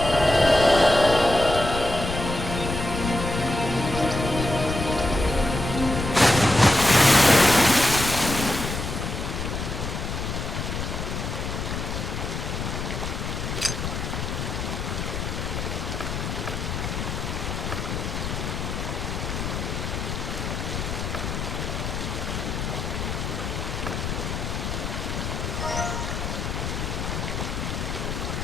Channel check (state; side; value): noise; left; rumble, 4 dB below the sound